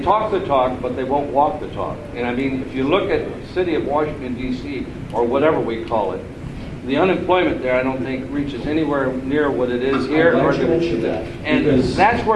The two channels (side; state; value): both; identical; correlation 1.00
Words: talk the talk, but they won't walk the talk. And I mean, if you look at the city of Washington, D.C., or whatever we call it, the unemployment there, I don't think, reaches anywhere near what it is here. And that's